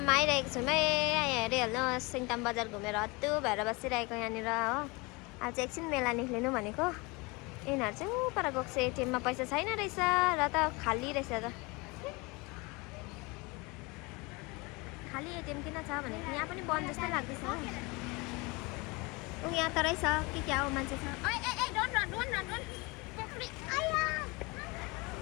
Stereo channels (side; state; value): right; quieter; 26.3 dB